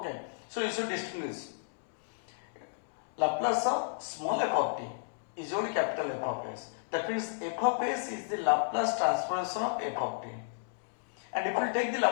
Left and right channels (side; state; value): right; silent; digital silence